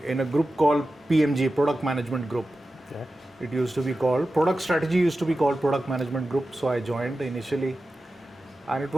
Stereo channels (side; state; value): both; normal; correlation 0.93